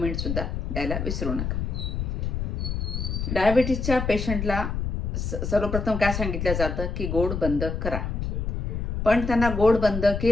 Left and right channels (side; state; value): left; noise; rumble, 2 dB below the sound